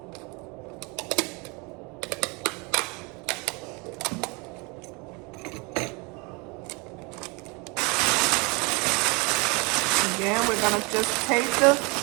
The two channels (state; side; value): quieter; left; 29.1 dB